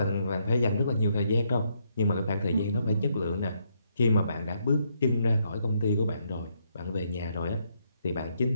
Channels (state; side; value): inverted; both; correlation -0.75